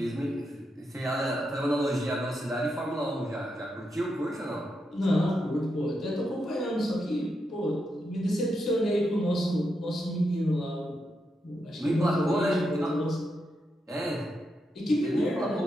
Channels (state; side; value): normal; both; correlation 0.84